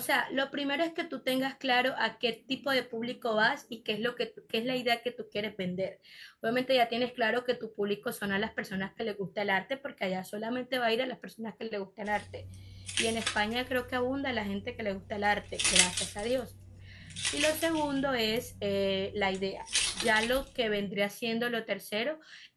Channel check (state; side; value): identical; both; correlation 1.00